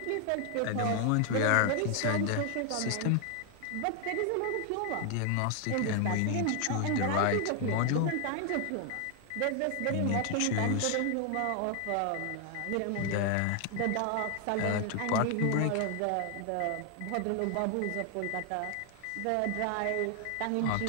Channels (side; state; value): both; different; correlation 0.00